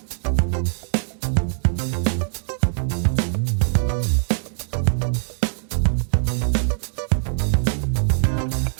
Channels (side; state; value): left; silent; digital silence